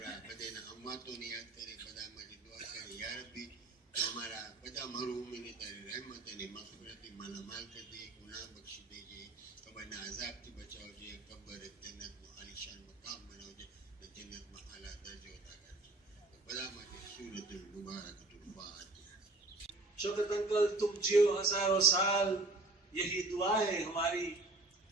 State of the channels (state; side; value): quieter; left; 3.0 dB